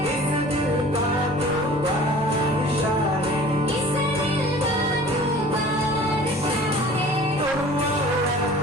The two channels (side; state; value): both; normal; correlation 0.45